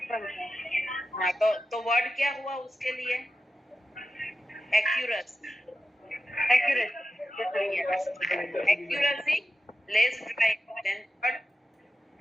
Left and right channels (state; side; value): normal; both; correlation 0.92